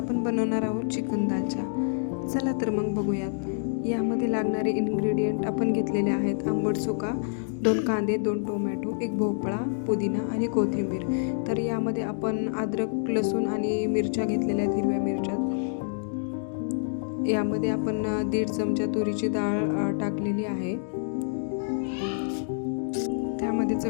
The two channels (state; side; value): silent; right; digital silence